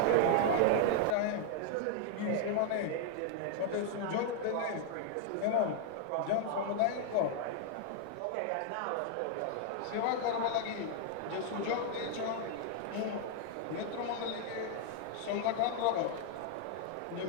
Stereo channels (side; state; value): both; different; correlation 0.00